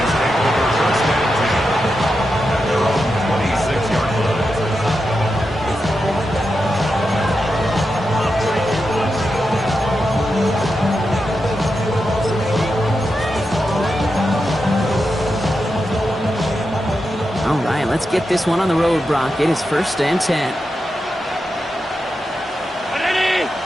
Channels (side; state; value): both; normal; correlation 0.88